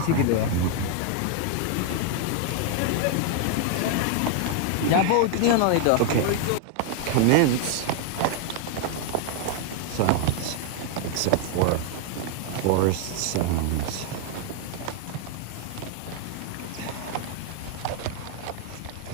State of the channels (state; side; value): different; both; correlation 0.00